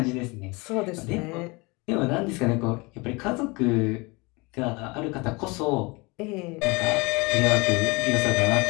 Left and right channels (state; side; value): quieter; right; 26.2 dB